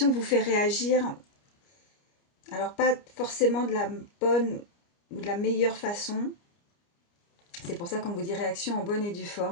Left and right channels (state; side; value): late; right; 29 ms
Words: vous fait réagir. Alors, pas forcément de la bonne ou de la meilleure façon. C'est pour ça qu'on vous dit réaction en bonne et due